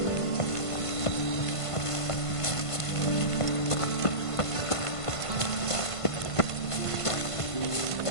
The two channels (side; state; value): right; late; 1.5 ms